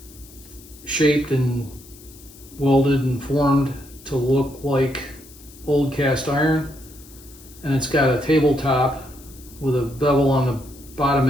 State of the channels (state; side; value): noise; left; hiss, 21 dB below the sound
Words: shaped and welded and formed to look like old cast iron. And it's got a tabletop with a bevel on the bottom